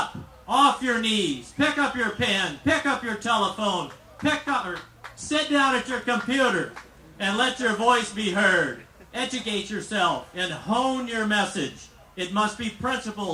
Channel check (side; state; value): both; identical; correlation 1.00